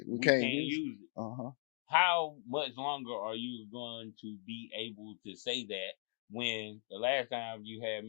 we can't use it. How much longer are you going to be able to say that when the last time you had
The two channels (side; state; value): right; silent; 52 dB below the other